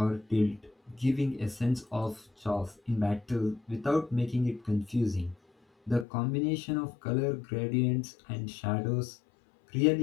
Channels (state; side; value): drops out; right; at 6.1 s